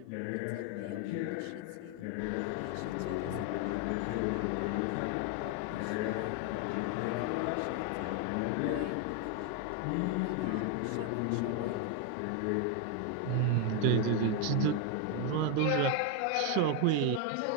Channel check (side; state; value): both; different; correlation 0.01